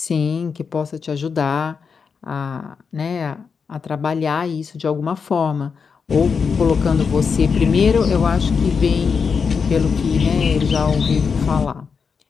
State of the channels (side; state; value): right; quieter; 5.7 dB